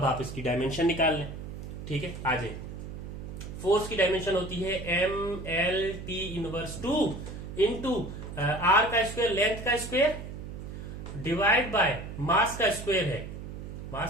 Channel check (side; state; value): right; noise; hum, 9 dB below the sound